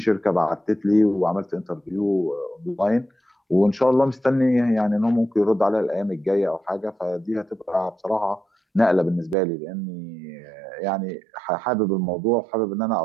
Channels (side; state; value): left; drops out; at 9.3 s